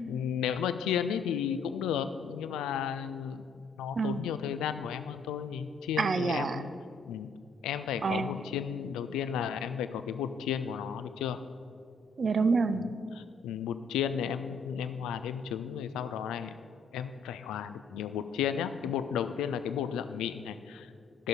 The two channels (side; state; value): right; quieter; 3.4 dB